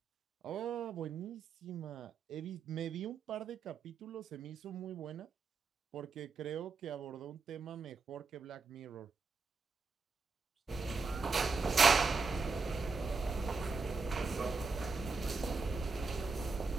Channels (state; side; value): quieter; left; 4.5 dB